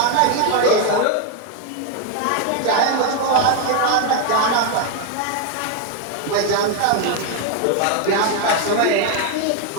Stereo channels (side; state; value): both; different; correlation 0.01